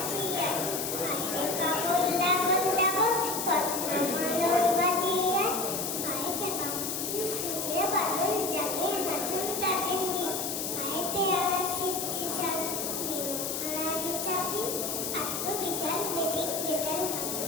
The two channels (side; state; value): left; noise; hiss, 3 dB below the sound